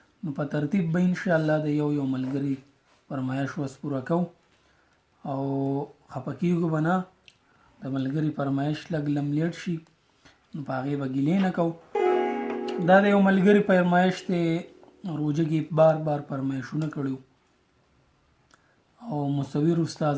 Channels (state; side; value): identical; both; correlation 1.00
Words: نو په ترتیب به انشاءالله د یو ملګري فرمایش وس پوره کوو او خفه کېږو به نه. د ملګري فرمایش لږ لم لیټ شي نو په هغې به ګیلې نه کوو. دا د یو ملګري فرمایش دی، روژه کې بار فرمایشونه کړي او مصور استاذ